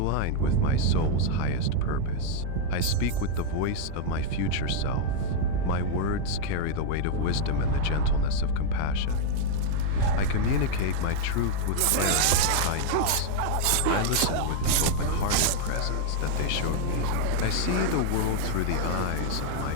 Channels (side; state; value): both; different; correlation 0.00